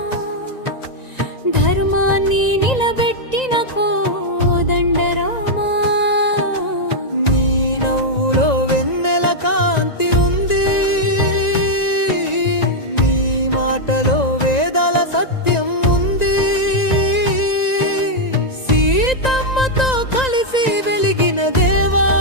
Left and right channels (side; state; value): right; late; 1.9 ms